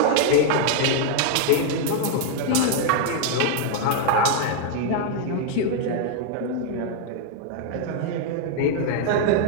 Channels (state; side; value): different; both; correlation 0.00